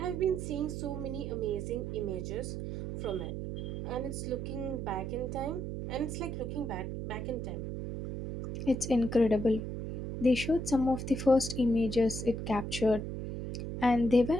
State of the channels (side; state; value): right; noise; hum, 5 dB below the sound